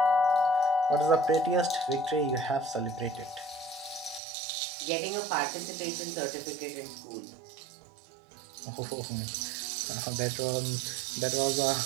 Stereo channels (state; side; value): drops out; left; at 4.2 s